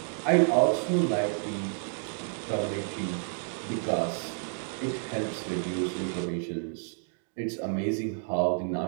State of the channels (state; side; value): silent; left; 58 dB below the other